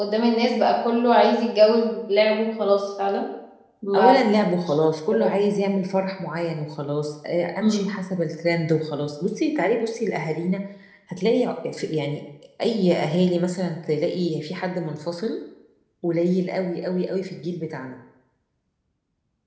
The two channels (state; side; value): identical; both; correlation 1.00